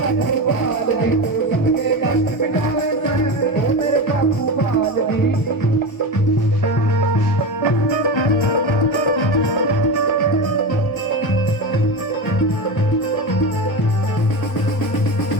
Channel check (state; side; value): late; right; 1.2 ms